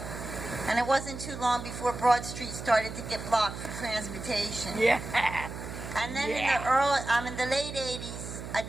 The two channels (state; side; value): noise; right; hum, 9 dB below the sound